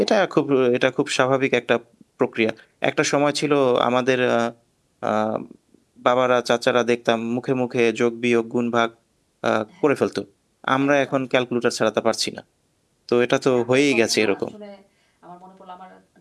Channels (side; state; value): both; identical; correlation 1.00